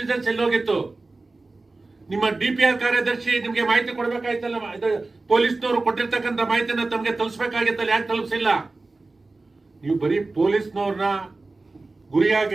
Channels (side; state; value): left; quieter; 3.4 dB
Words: ಎಲ್ಲೋಗಿತ್ತು? ನಿಮ್ಮ ಡಿಪಿಆರ್ ಕಾರ್ಯದರ್ಶಿ ನಿಮ್ಗೆ ಮಾಹಿತಿ ಕೊಡ್ಬೇಕಾಯ್ತಲ್ಲ, ಪೊಲೀಸ್ನವರು ಕೊಟ್ಟಿರ್ತಕ್ಕಂಥ ಮಾಹಿತಿನ ತಮಗೆ ತಲುಪಿಸಬೇಕಾಗಿತ್ತಲ್ಲ, ಯಾಕೆ ತಲುಪಿಸಿಲ್ಲ? ನೀವು ಬರೀ ಪೊಲೀಸ್ನವ್ರನ್ನ ಗುರಿಯಾಗಿ